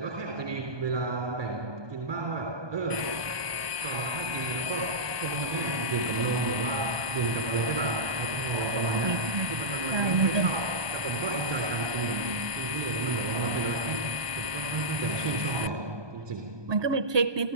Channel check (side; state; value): left; late; 1.2 ms